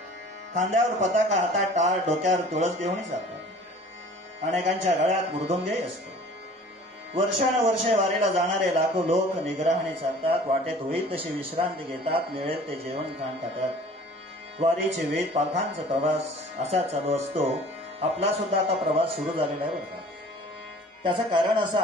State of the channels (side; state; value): both; normal; correlation 0.48